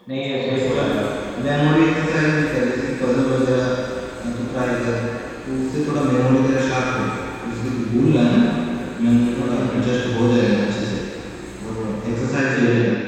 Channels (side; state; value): both; identical; correlation 1.00